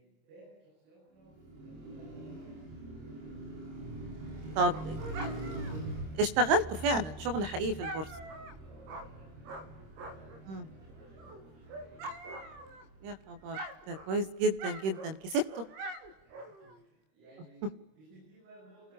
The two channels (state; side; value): late; left; 26 ms